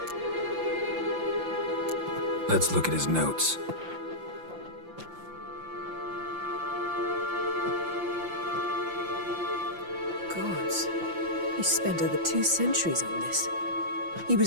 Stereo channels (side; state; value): left; late; 5.8 ms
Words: Let's look at his notes. Gods. He spent over 2 centuries on this. He